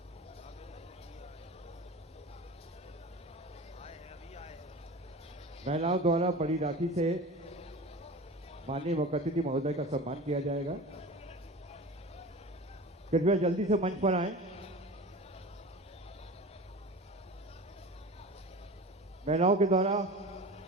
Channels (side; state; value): both; normal; correlation 0.35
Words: महिलाओं द्वारा बड़ी राखी से माननीय मुख्य अतिथि महोदय का सम्मान किया जाएगा। कृपया जल्दी से मंच पर आए। महिलाओं के द्वारा